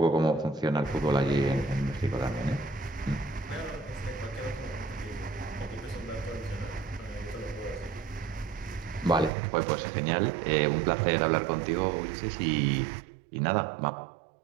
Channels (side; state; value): left; drops out; at 9.3 s